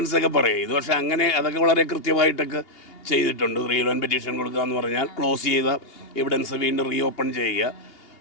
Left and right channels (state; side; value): late; right; 2.8 ms